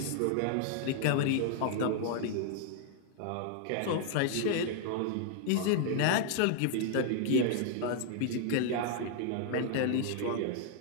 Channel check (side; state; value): both; different; correlation 0.00